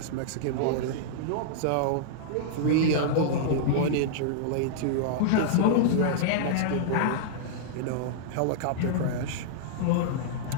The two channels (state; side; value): different; both; correlation -0.02